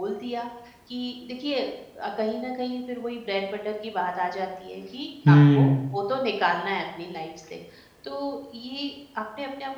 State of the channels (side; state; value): both; identical; correlation 1.00